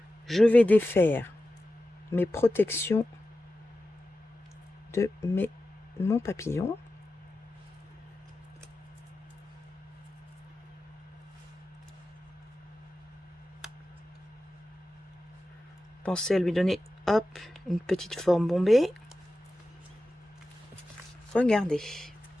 Je vais défaire mes protections de mon papillon. Pensez à lui donner, hop, une petite forme bombée. Regardez.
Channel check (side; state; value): both; normal; correlation 0.93